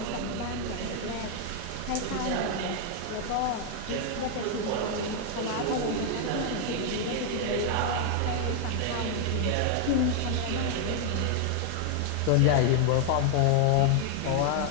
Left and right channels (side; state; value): both; different; correlation 0.00